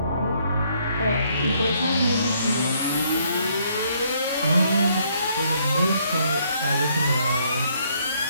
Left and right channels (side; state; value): both; inverted; correlation -0.68